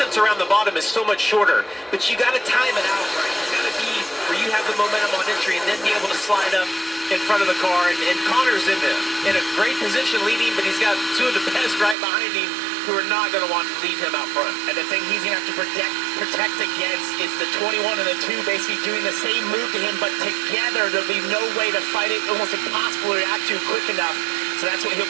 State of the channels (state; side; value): drops out; left; at 12.0 s